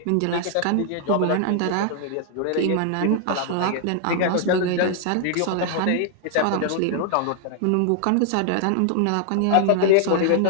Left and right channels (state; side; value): different; both; correlation 0.00